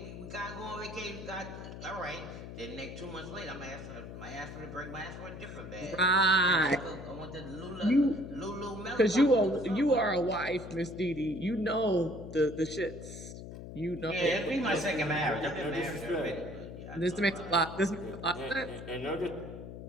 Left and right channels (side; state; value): left; noise; hum, 11 dB below the sound